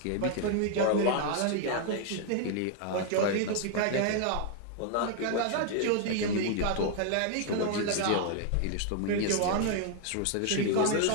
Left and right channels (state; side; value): different; both; correlation 0.00